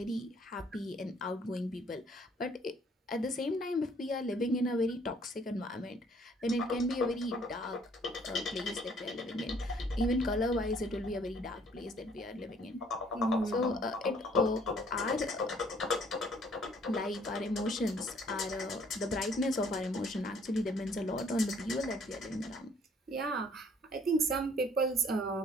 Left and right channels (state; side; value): normal; both; correlation 0.61